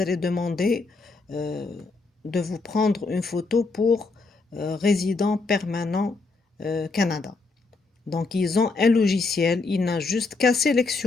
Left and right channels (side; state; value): right; quieter; 3.9 dB